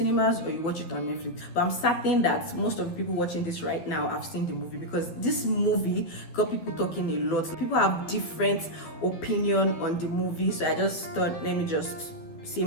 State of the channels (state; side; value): late; right; 12 ms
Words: or you watch it on Netflix. But I'm certain that most of the people watching this right now have seen the movie because this movie got people talking a lot. People have different opinion on the movie. So I just thought, let me just say